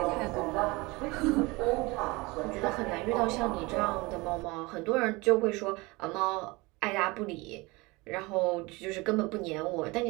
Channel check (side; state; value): left; quieter; 24.0 dB